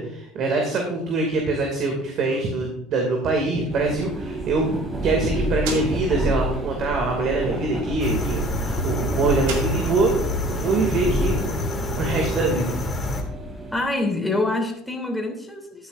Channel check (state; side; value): normal; both; correlation 0.50